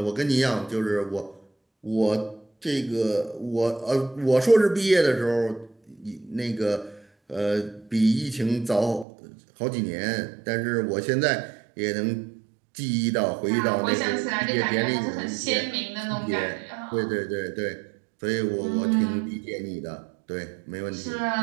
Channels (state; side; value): drops out; left; at 9.1 s